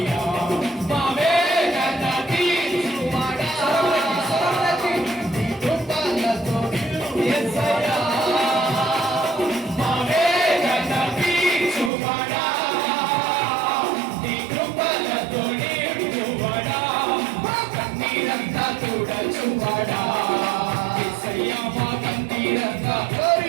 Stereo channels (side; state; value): left; drops out; at 11.9 s